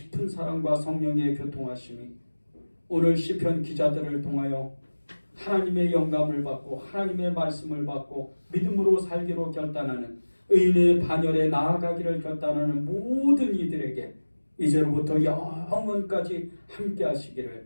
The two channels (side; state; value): both; inverted; correlation -1.00